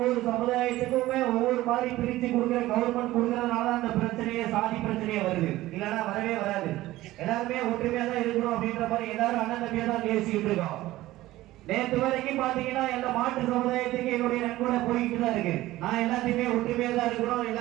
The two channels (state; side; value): quieter; left; 16.6 dB